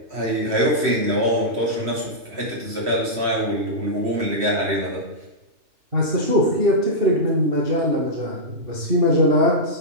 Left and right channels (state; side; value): late; left; 3.1 ms